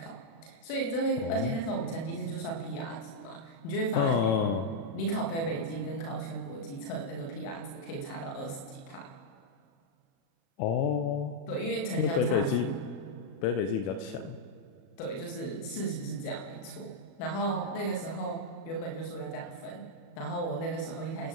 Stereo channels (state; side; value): late; right; 36 ms